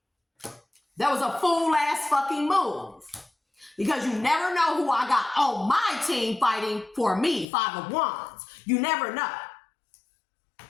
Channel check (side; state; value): right; drops out; at 7.5 s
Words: That was a fool ass fucking move. Because you never know who I got on my team fighting for me, Five of Wands. You never know.